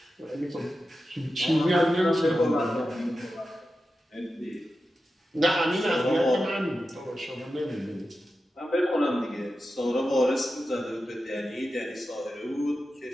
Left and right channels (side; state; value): both; normal; correlation 0.91